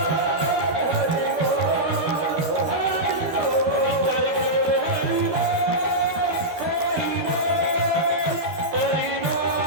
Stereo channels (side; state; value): left; late; 12 ms